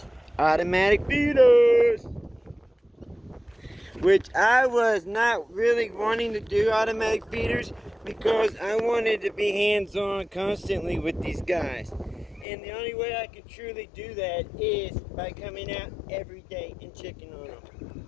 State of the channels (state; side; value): drops out; right; at 12.5 s